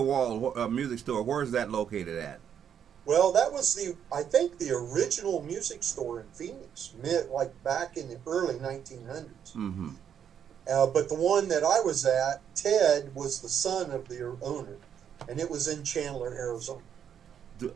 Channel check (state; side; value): quieter; left; 8.6 dB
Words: music store, where is that located at? Well, that was I think the original music store in Phoenix, like back in the early 1900s. Mm-hmm. But the one that I was at, Ted was the son of the owner, and it was in Chandler, Arizona.